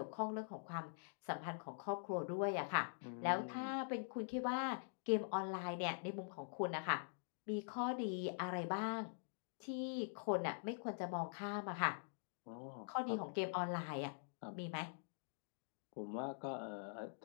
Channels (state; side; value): silent; right; digital silence